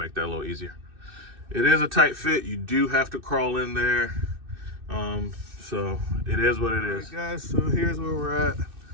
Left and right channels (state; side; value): late; left; 2.6 ms